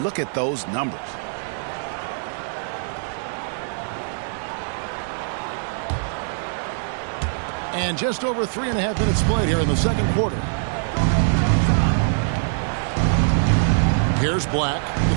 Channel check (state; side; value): silent; left; 59 dB below the other